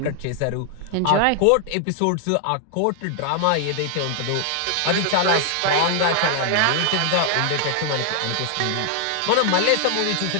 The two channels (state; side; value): different; both; correlation 0.00